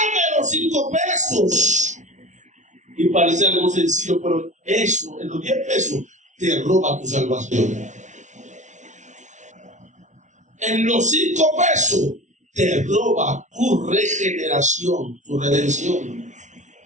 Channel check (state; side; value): late; left; 0.36 ms